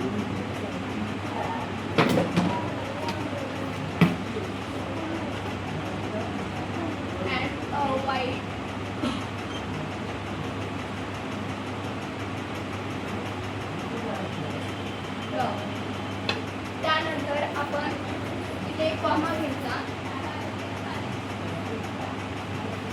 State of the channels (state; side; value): identical; both; correlation 1.00